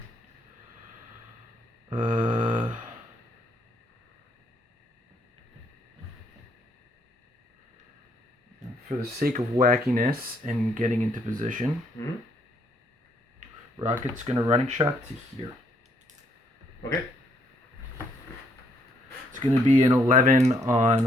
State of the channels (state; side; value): normal; both; correlation 0.70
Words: For the sake of wackiness and getting into position, Rocket's gonna running shot to here. Okay. It's gonna be an 11 on